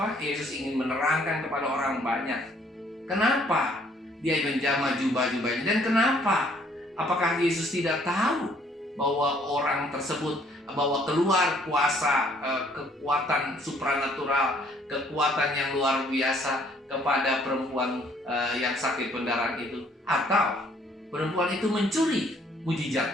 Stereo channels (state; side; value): normal; both; correlation 0.63